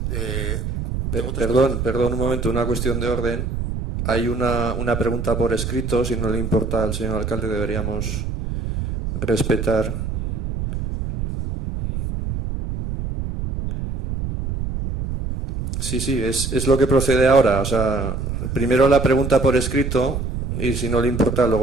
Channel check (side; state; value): right; noise; rumble, 4 dB below the sound